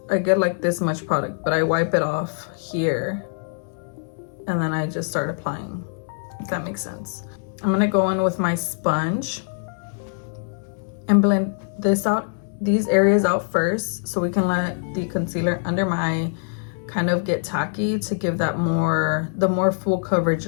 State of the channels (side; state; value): right; silent; 63 dB below the other